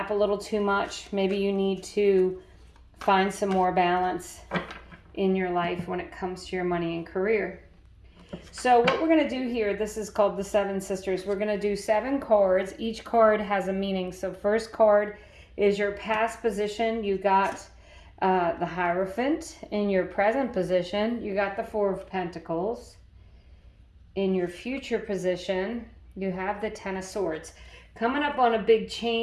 a little too much. Maybe you need to find some more balance in your life when it comes to your money and career. So what we're going to do here, this is called the Seven Sisters. We're going to do 7 cards. Each card has a meaning. So first card is your past position. You got the Hierophant. In your present position, you got the Four of Pentacles. In your future position, you have the Ten of Swords. Coming up on a big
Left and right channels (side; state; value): both; identical; correlation 1.00